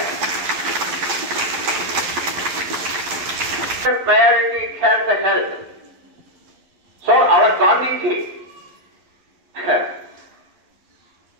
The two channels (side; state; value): left; late; 11 ms